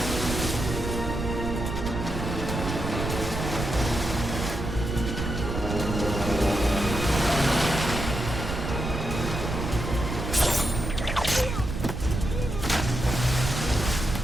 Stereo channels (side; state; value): right; noise; rumble, 4 dB below the sound